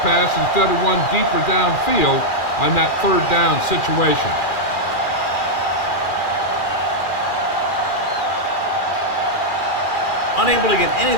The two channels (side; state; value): right; late; 2.4 ms